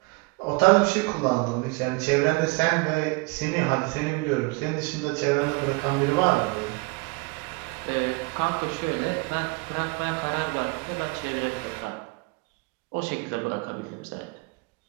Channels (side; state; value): left; quieter; 27.4 dB